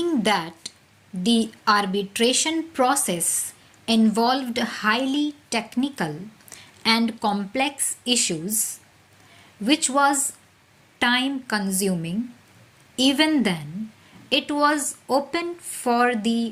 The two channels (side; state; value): both; identical; correlation 1.00